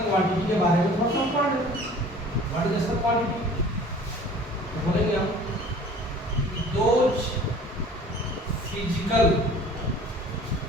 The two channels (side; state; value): both; normal; correlation 0.48